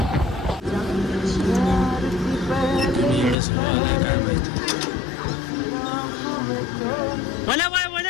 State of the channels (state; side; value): drops out; right; at 3.4 s